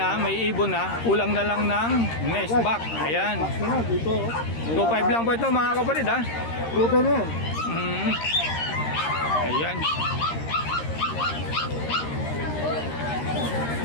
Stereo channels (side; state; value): right; late; 13 ms